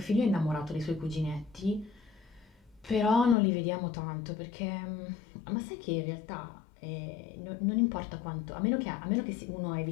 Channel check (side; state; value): right; drops out; at 3.4 s